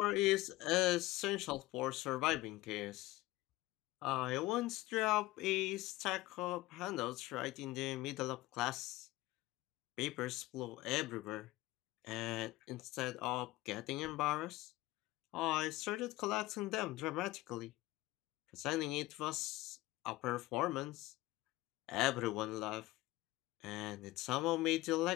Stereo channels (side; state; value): right; quieter; 18.4 dB